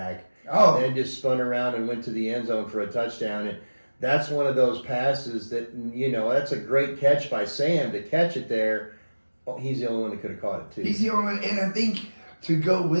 Oh. And then just spun around and went to the end zone for a touchdown. And that's one of those passes that, that's a great catch by Sam to catch it there. Oh, he's the only one that could have caught it, too. He's the only one. And I think to go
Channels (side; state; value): both; inverted; correlation -1.00